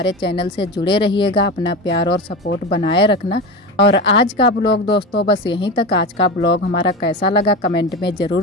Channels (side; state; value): both; normal; correlation 0.24